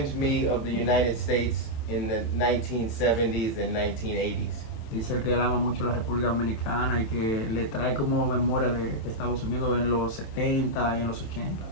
me of the United States in the 1970s and 1980s. Dice que él ama mucho la República Dominicana y que le trae como memoria de Estados Unidos en los 70 y en los 80.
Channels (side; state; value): right; late; 27 ms